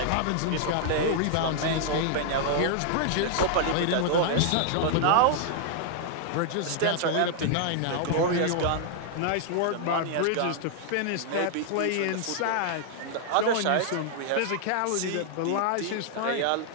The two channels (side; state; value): both; different; correlation 0.00